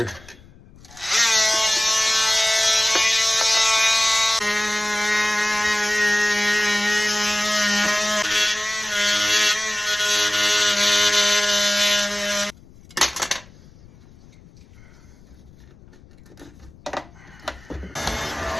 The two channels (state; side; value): noise; left; rumble, 24 dB below the sound